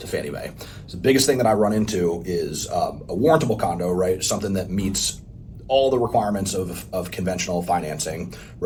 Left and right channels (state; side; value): identical; both; correlation 1.00